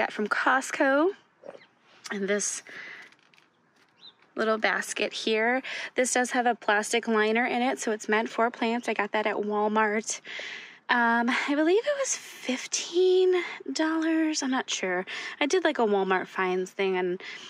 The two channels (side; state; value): both; identical; correlation 1.00